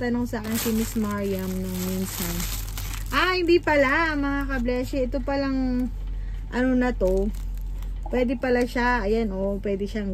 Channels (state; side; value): identical; both; correlation 1.00